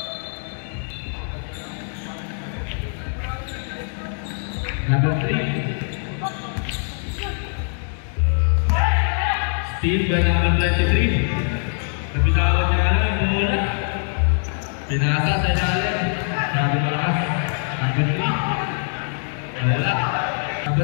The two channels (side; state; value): right; silent; 56 dB below the other